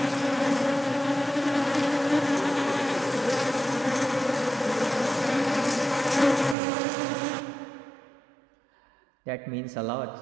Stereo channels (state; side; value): drops out; left; at 6.6 s